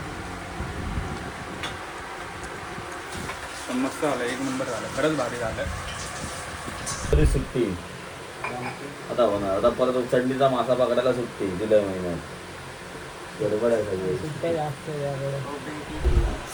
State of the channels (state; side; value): identical; both; correlation 1.00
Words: पण मस्त झालं, एक नंबर झालं, खरंच भारी झालं. तरी सुट्टी आता होणार. आता परत चटणीचा मासा पकडायला सुट्टी जुलै महिन्यात. बरोबर आहे सगळे. सुट्ट्या जास्त आहे यावेळेस.